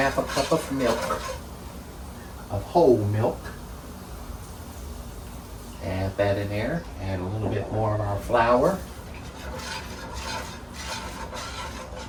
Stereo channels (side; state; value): both; identical; correlation 1.00